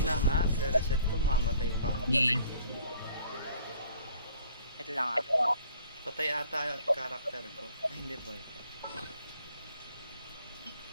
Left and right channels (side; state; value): both; inverted; correlation -0.56